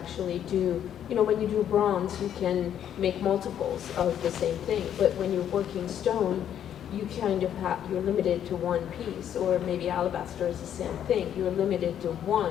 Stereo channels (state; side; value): quieter; right; 9.8 dB